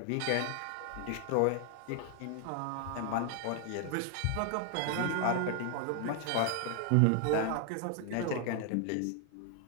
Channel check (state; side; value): different; both; correlation 0.00